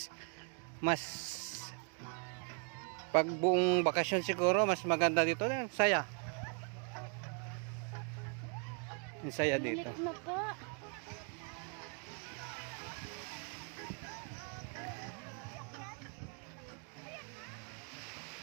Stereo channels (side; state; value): left; quieter; 38.3 dB